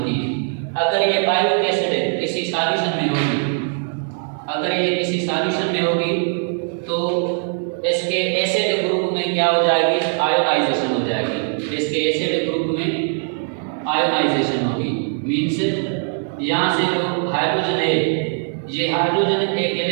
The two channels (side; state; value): left; silent; 57 dB below the other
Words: है। अगर ये पायरुविक एसिड किसी सॉल्यूशन में होगी, अगर ये किसी सॉल्यूशन में होगी तो इसके एसिड ग्रुप में क्या हो जाएगी, आयोनाइजेशन हो जाएगी। इसके एसिड ग्रुप में आयोनाइजेशन होगी, मीन्स यहाँ से जो हाइड्रोजन है, ये हाइड्रोजन एक